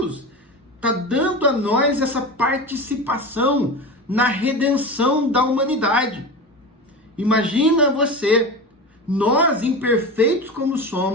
está dando a nós essa participação na redenção da humanidade. Imagina você, nós imperfeitos como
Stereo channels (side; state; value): both; normal; correlation 0.26